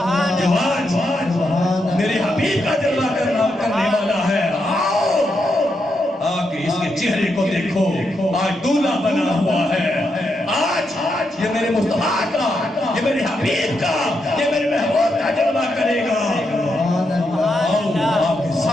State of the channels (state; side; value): normal; both; correlation 0.82